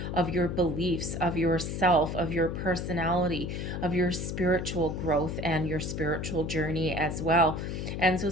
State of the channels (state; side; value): noise; left; hum, 4 dB below the sound